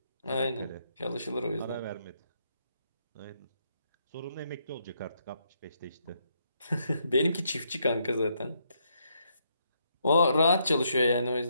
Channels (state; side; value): inverted; both; correlation -0.76